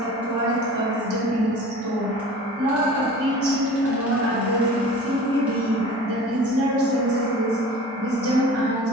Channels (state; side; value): normal; both; correlation 0.41